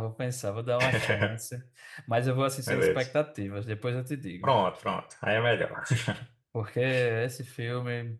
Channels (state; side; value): identical; both; correlation 1.00